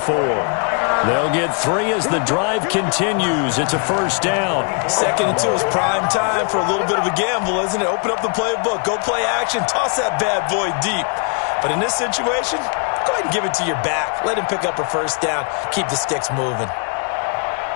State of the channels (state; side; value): quieter; right; 39.9 dB